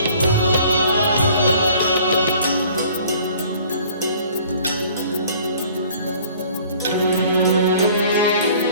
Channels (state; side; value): inverted; both; correlation -0.53